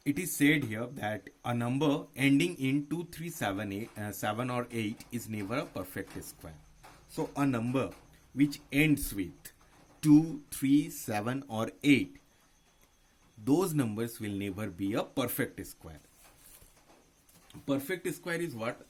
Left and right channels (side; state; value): both; identical; correlation 1.00